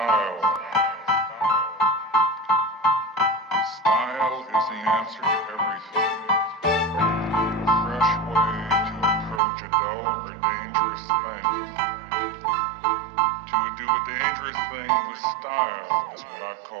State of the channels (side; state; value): left; drops out; at 9.4 s